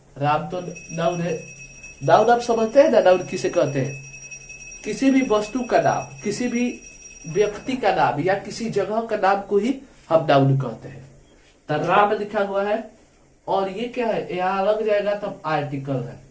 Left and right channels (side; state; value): both; identical; correlation 1.00